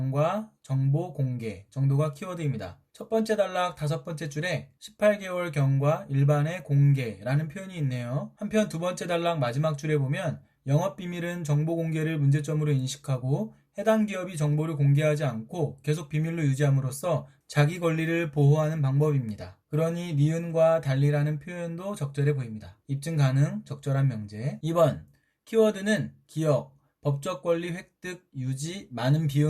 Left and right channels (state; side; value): identical; both; correlation 1.00